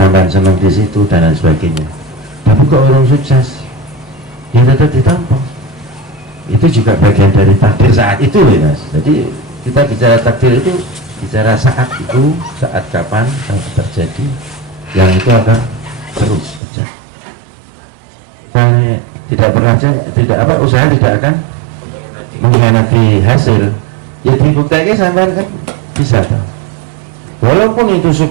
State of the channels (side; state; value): left; drops out; at 16.6 s